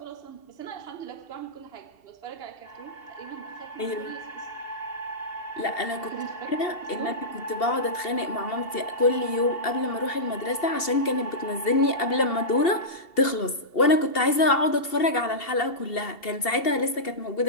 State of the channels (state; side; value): late; right; 2.7 ms